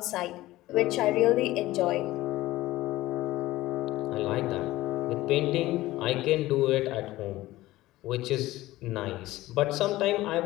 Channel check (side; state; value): right; quieter; 17.1 dB